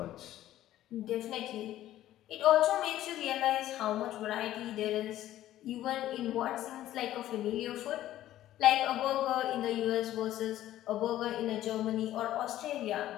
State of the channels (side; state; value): right; quieter; 13.5 dB